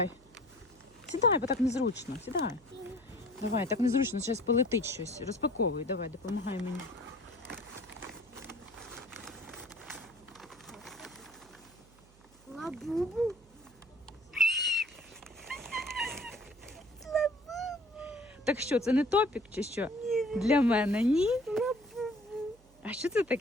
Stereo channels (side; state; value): right; noise; hum, 27 dB below the sound